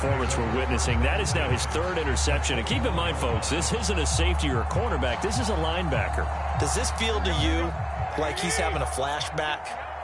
we're witnessing. That is now his third interception. And keep in mind, folks, this isn't a safety or a cornerback. This is a linebacker. Does this feel to you like he's having a flashback?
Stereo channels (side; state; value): both; identical; correlation 1.00